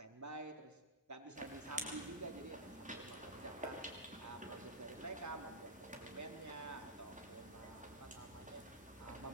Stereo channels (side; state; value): both; normal; correlation -0.08